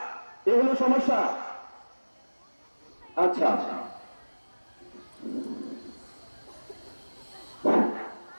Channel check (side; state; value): both; inverted; correlation -1.00